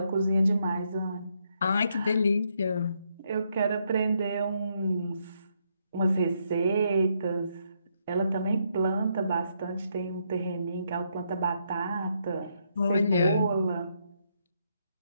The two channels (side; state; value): both; inverted; correlation -0.76